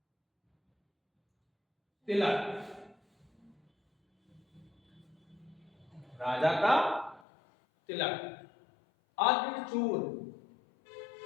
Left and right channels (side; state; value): right; drops out; at 7.2 s